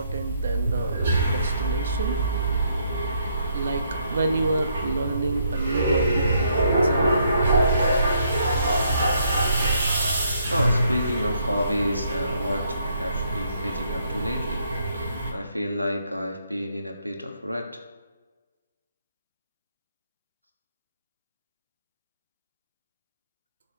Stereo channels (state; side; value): inverted; both; correlation -0.72